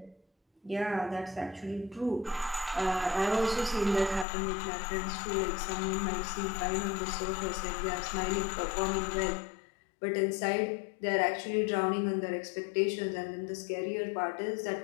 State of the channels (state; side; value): drops out; right; at 4.2 s